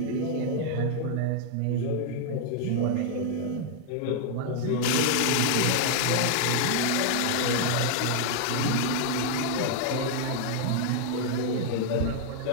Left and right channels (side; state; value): both; different; correlation 0.00